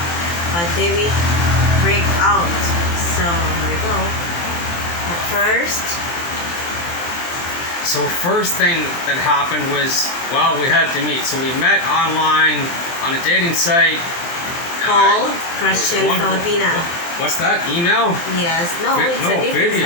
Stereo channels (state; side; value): late; right; 23 ms